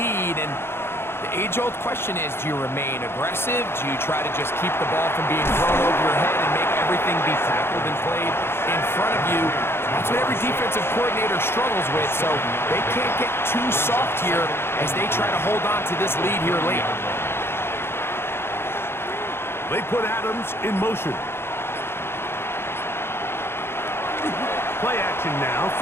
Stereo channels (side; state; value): right; late; 0.11 ms